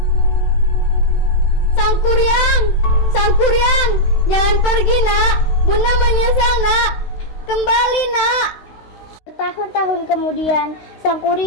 Sang Kuryang, jangan pergi nak. Bunda menyesal nak. Kembali nak. Bertahun-tahun kemudian, Sang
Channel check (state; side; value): late; right; 16 ms